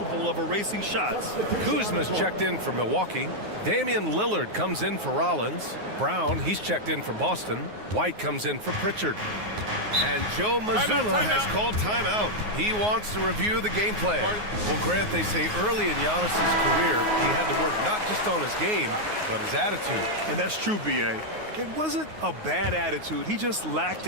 of erasing shots. Kuzma's checked in for Milwaukee. Damian Lillard comes in for Rollins. Brown, he's checked in for Boston. White comes in for Pritchard. And Joe Mazzulla has called timeout. He wants to review the game plan. Well, Grant, they say early in Giannis's career, he had to work not just on his game, but his attitude. And that's true, B.A. It wasn't a bad attitude. He just lacked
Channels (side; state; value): left; late; 9.5 ms